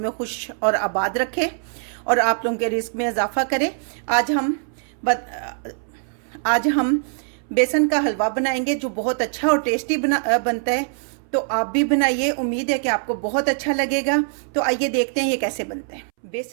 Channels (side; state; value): left; silent; 64 dB below the other